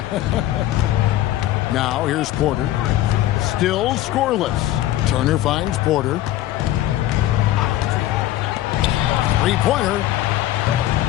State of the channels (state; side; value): quieter; right; 14.3 dB